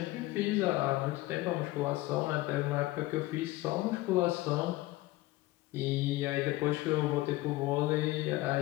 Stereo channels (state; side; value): quieter; right; 18.5 dB